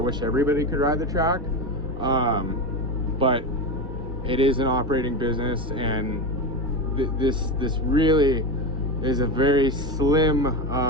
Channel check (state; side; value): normal; both; correlation 0.18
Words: everybody could ride the track, but it is an operating business, and this really is a very slim